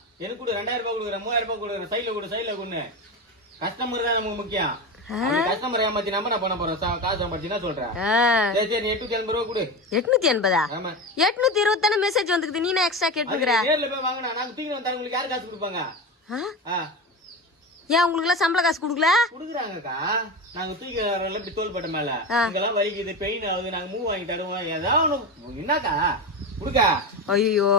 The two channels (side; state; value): both; normal; correlation 0.22